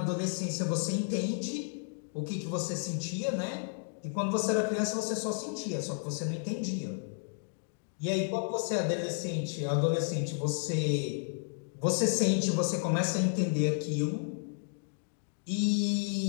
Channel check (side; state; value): right; silent; digital silence